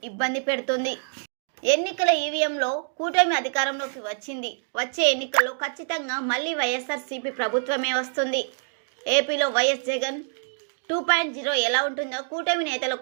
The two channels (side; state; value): left; silent; digital silence